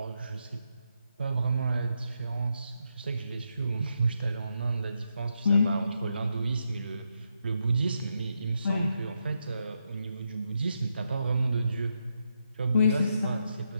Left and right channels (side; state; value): both; inverted; correlation -0.82